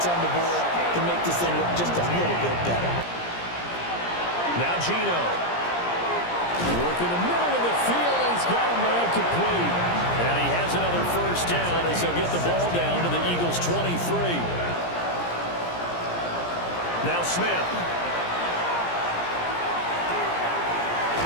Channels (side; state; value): right; late; 17 ms